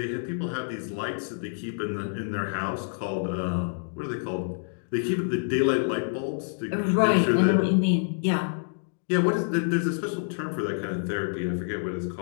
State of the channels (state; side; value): silent; right; digital silence